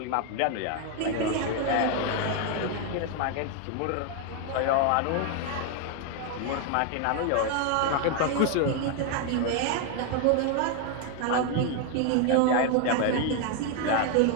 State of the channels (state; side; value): different; both; correlation 0.01